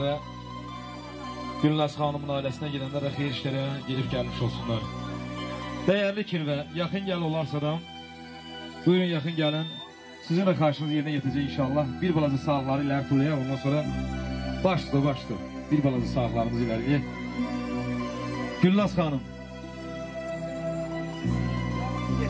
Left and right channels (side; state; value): both; identical; correlation 1.00